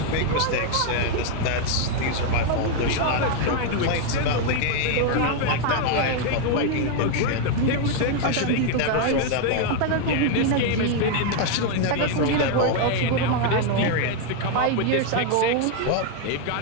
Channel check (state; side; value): different; both; correlation 0.01